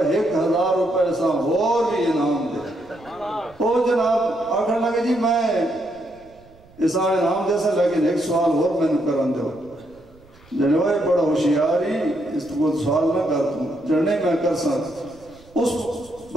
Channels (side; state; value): right; noise; rumble, 27 dB below the sound